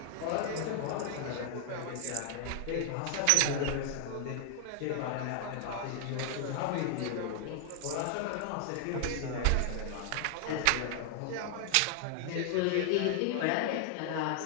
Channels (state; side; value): different; both; correlation 0.00